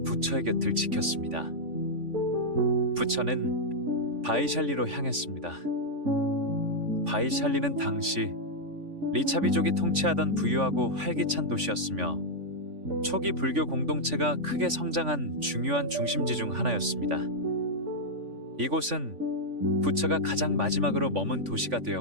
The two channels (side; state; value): left; late; 3.5 ms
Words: 부처의 곁을 지켰습니다. 부처는 바이샬리로 향했습니다. 바이샬리는 당시 리차비족이 통치하던 부유하고 활기찬 도시였으며 초기 불교 공동체가 크게 성장한 중요한 중심지 중 하나였습니다. 이곳은 부처가 가장 마지막으로 머문 도시가